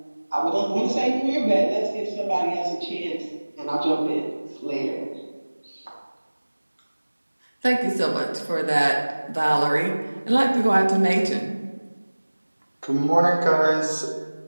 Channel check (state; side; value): inverted; both; correlation -1.00